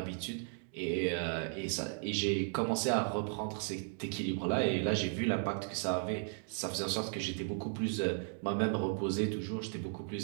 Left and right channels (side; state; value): left; silent; 54 dB below the other